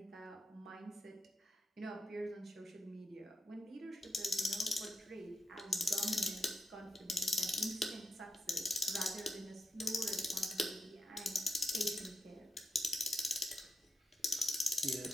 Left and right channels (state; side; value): normal; both; correlation 0.87